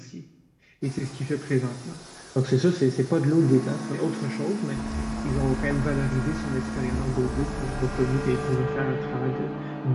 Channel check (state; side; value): identical; both; correlation 1.00